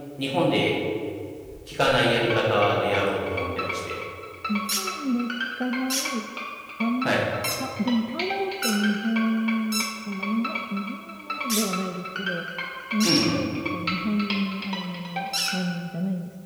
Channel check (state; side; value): identical; both; correlation 1.00